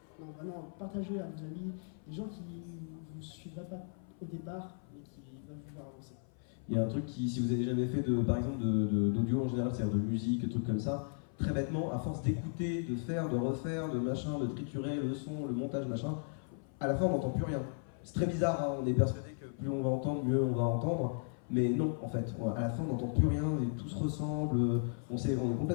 Non vraiment partagez à vos amis, des gens qui ne vous suivraient pas au départ mais qui veulent vous voir avancer. Il y a un truc qui, si vous avez jamais fait par exemple d'audio en général, c'est-à-dire de musique, de trucs comme ça, très bêtement, à force d'écouter, de faire, de refaire, de machin, de triturer le son, le montage, machin, à la fin on n'entend plus rien. C'est très bizarre, hein, on est persuadé que plus on va entendre, mieux on va entendre, mais non en fait, à la fin on n'entend plus rien, et tout se ressemble, on est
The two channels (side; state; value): right; silent; 54 dB below the other